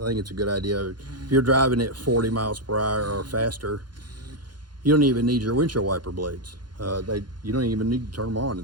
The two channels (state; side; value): late; left; 0.71 ms